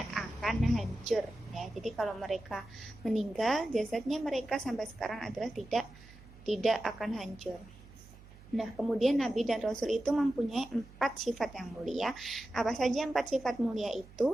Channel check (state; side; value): noise; right; hum, 20 dB below the sound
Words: akan hancur ya. Jadi kalau mereka meninggal, jasadnya mereka sampai sekarang adalah tidak akan hancur. Nah, kemudian Nabi dan Rasul itu mempunyai 4 sifat yang mulia. Apa saja 4 sifat mulia